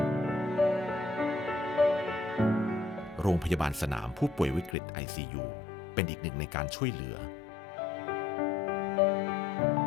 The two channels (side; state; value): right; drops out; at 4.8 s